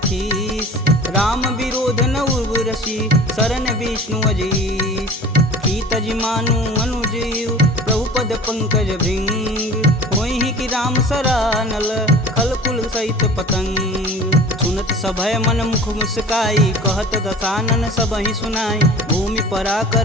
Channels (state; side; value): normal; both; correlation 0.41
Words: खीस, राम विरोध न उर्वरसी, शरण विष्णु अजीस, की तज मानु अनुजीव, प्रभु पद पंकज भृंग, होहि कि राम सरानल, खल कुल सहित पतंग, सुनत सभय मन मुख मुस्काई, कहत दसानन सबहि सुनाई, भूमि परा